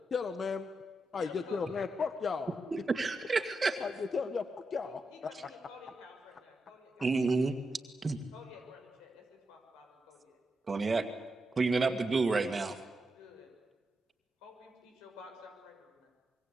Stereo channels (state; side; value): normal; both; correlation 0.86